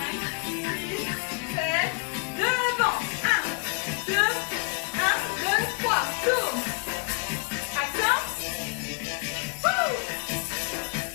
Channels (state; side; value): quieter; right; 32.0 dB